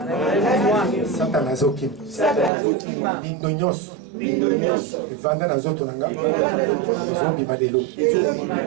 Satan azokim. Bindonyos. Vanda na zoto nanga. Zombi malelo.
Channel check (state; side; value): drops out; left; at 2.5 s